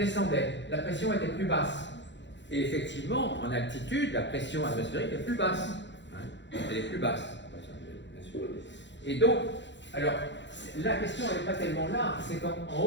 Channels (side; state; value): right; late; 0.52 ms